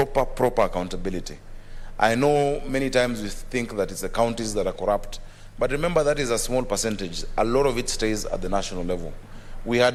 accountability. I know many times we think that it's the counties that are corrupt, but remember that is a small percentage. A lot of it stays at the national level. We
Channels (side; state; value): both; identical; correlation 1.00